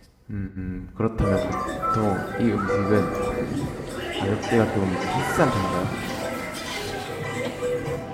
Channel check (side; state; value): both; identical; correlation 1.00